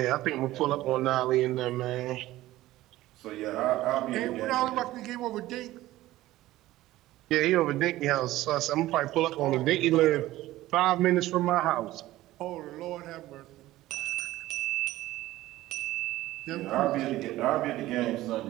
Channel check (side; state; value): left; quieter; 16.2 dB